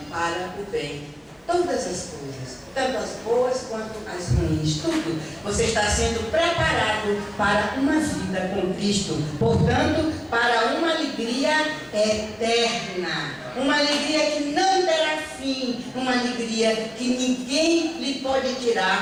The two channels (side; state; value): both; identical; correlation 1.00